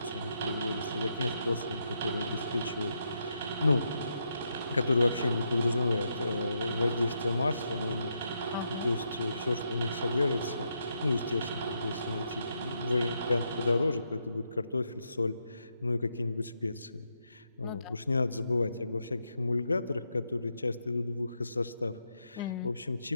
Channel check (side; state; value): both; inverted; correlation -0.81